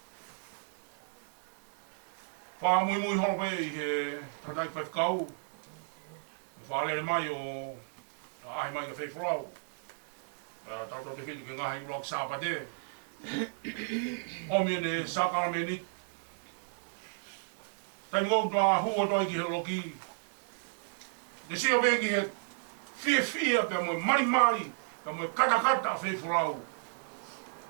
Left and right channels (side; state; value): left; silent; 55 dB below the other